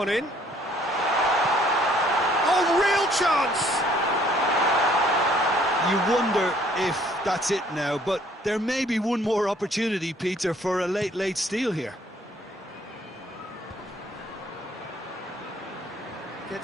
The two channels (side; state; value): both; normal; correlation 0.61